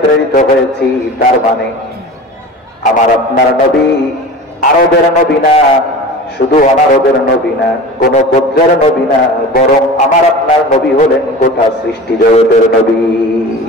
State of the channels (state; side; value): normal; both; correlation 0.35